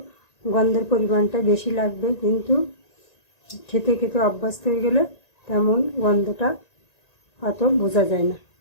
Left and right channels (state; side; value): late; right; 1.9 ms